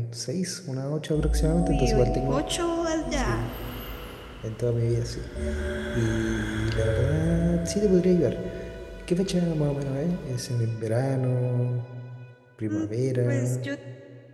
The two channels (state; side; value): identical; both; correlation 1.00